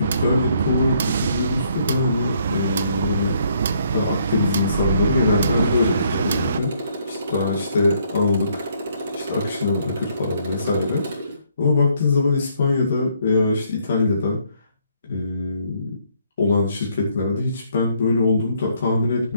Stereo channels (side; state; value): both; inverted; correlation -0.68